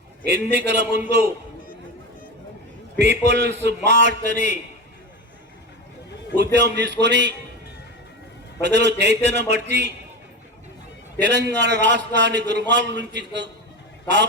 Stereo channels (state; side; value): normal; both; correlation 0.22